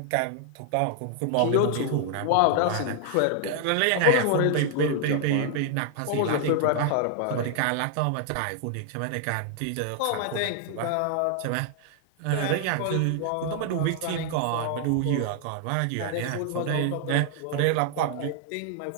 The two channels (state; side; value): different; both; correlation 0.00